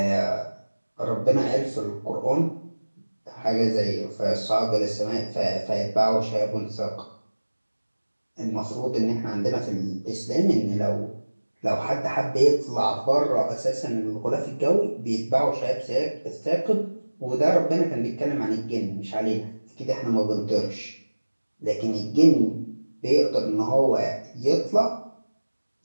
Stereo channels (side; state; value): both; inverted; correlation -1.00